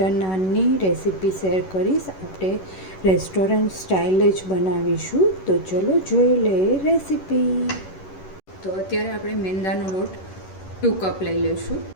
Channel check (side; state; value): right; late; 11 ms